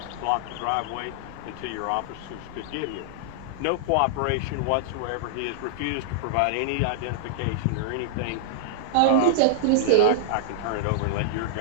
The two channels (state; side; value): different; both; correlation -0.01